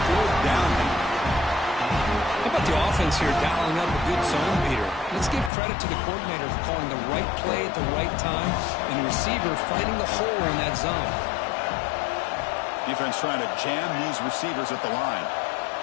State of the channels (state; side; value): drops out; right; at 5.5 s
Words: down. How about the offense here dialing up a good zone beater? Let's give credit to the coordinator for calling the right play at the right time and the receiver finding the hole in that zone. Defense trying to jam these receivers at the line.